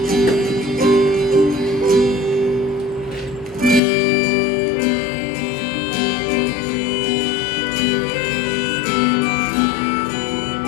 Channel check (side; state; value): right; drops out; at 3.8 s